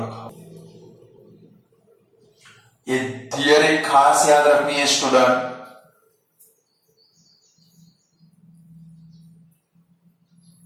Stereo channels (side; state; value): both; identical; correlation 1.00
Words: ये थियरी खास याद रखनी है स्टूडेंट।